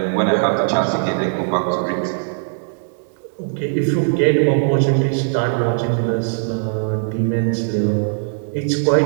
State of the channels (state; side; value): silent; left; 66 dB below the other